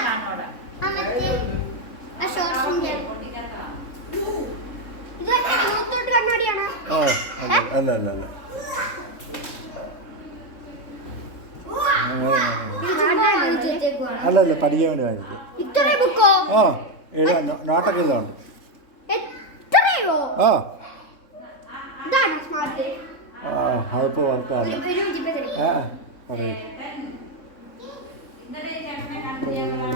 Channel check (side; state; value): right; late; 3.6 ms